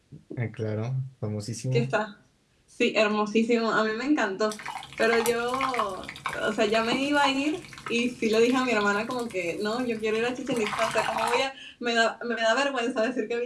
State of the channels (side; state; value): both; identical; correlation 1.00